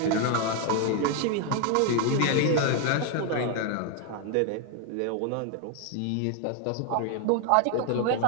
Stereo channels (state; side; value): different; both; correlation 0.01